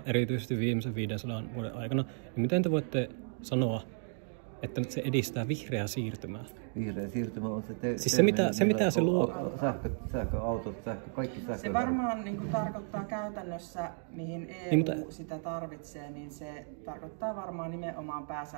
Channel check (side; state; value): left; silent; 55 dB below the other